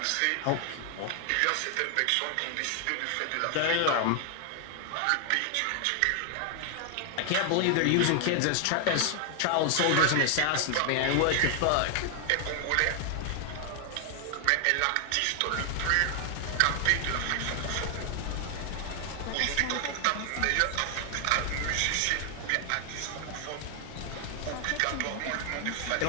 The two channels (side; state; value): both; different; correlation 0.00